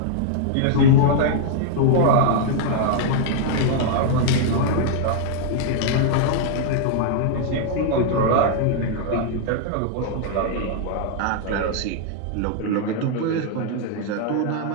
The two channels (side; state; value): both; different; correlation -0.01